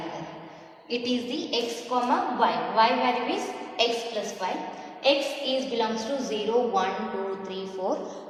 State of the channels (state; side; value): identical; both; correlation 1.00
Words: It is the x comma y. Y value is x plus 5. X is belongs to 0, 1, 2, 3, 4,